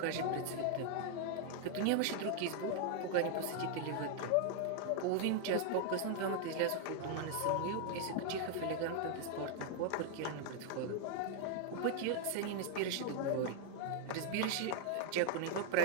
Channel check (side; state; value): both; different; correlation 0.00